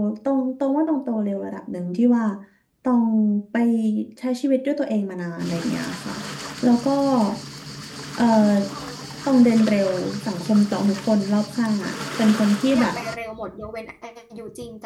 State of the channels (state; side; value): identical; both; correlation 1.00